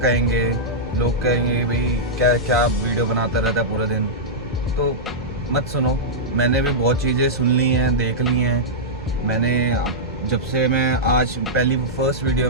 लोग कहेंगे भाई क्या क्या वीडियो बनाता रहता है पूरा दिन। तो मत सुनो, मैंने भी बहुत चीज़ें सुन ली हैं, देख ली हैं। मैंने जब से मैं आज पहली फर्स्ट वीडियो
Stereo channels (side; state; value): both; normal; correlation -0.11